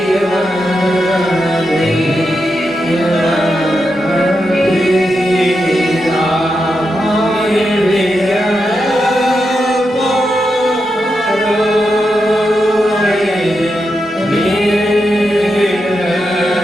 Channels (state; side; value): normal; both; correlation 0.86